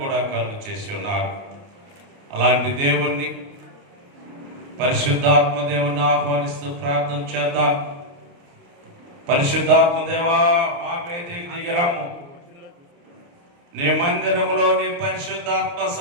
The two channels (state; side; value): late; left; 29 ms